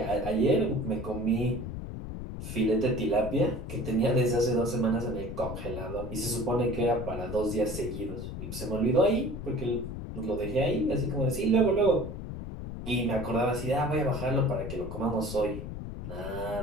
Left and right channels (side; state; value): left; noise; rumble, 7 dB below the sound